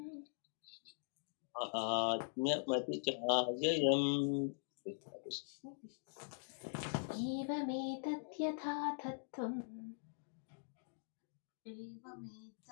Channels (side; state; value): right; silent; digital silence